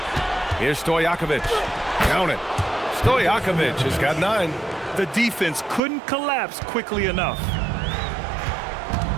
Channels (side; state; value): left; drops out; at 5.8 s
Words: Here's Stojakovic. Count it. Stojakovic has got 9. The defense couldn't collapse quickly enough.